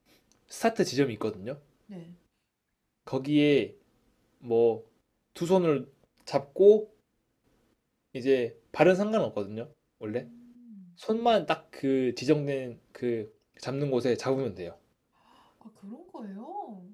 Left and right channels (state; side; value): identical; both; correlation 1.00